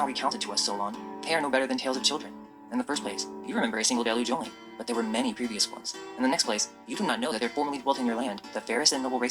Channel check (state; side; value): identical; both; correlation 1.00